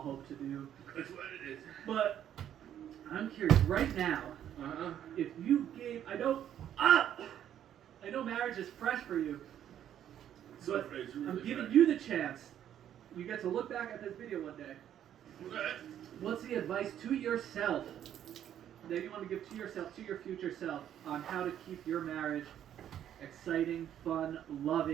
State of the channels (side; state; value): left; quieter; 10.4 dB